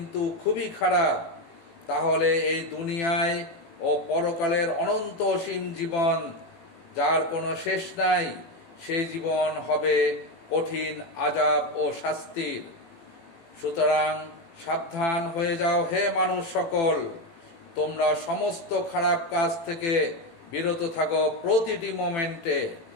খুবই খারাপ। তাহলে এই দুনিয়ায় ও পরকালের অনন্ত অসীম জীবন, যার কোনো শেষ নাই, সেই জীবন হবে কঠিন আযাব ও শাস্তির। সুতরাং সাবধান হয়ে যাও হে মানুষ সকল, তোমরা সমস্ত খারাপ কাজ থেকে বিরত থাকো প্রতিটি মোমেন্টে।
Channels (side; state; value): right; late; 18 ms